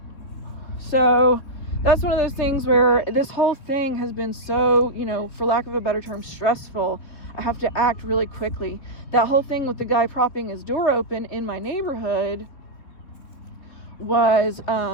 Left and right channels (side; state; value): right; late; 3.7 ms